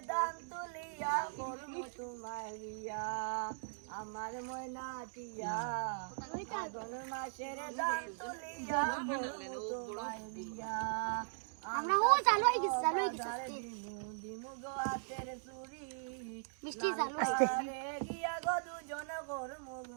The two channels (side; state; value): left; silent; digital silence